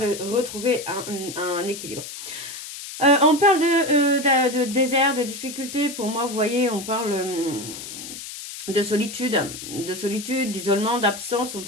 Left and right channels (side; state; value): left; noise; hiss, 10 dB below the sound